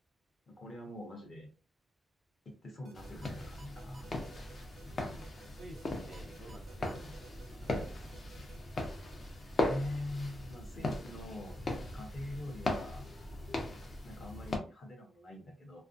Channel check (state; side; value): normal; both; correlation 0.83